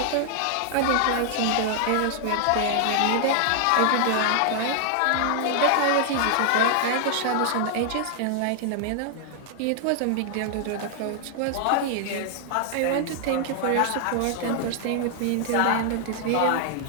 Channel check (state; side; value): different; both; correlation 0.00